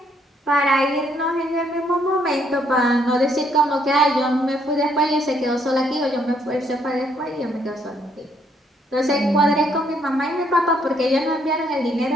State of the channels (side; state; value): both; normal; correlation 0.70